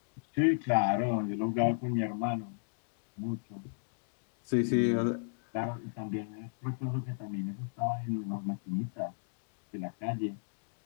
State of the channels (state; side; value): silent; right; digital silence